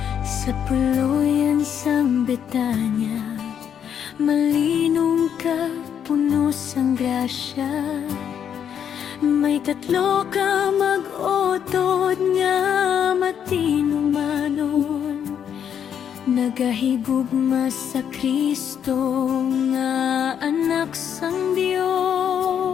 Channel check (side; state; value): right; quieter; 8.6 dB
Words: Sa puluyan sang Betanya, malinong ka, puno sang grasya. May tatlo ka mag-utod nga matinumanon, nagahigugma sa Kristo nga anak sang